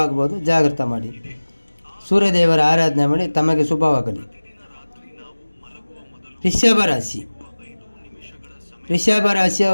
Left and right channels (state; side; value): inverted; both; correlation -1.00